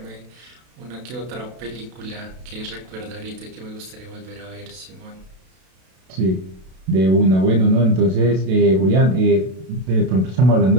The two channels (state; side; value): late; left; 32 ms